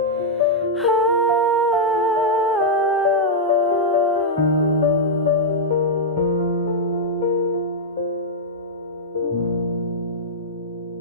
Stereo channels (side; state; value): both; normal; correlation -0.05